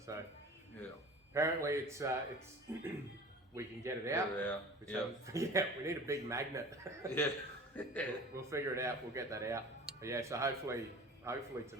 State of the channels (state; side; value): normal; both; correlation 0.40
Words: So apparently it's we can get it out. We need a big magnet. We'll figure it out. We'll get that out. But yeah, so hopefully